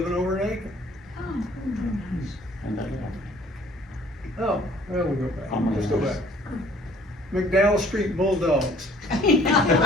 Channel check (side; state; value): both; normal; correlation 0.57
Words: over in Aiken. Oh, well, we'll go back. Let's go back. McDowell Street Bulldogs.